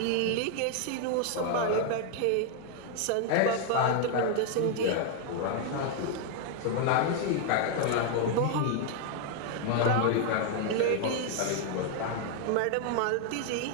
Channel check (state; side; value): different; both; correlation 0.00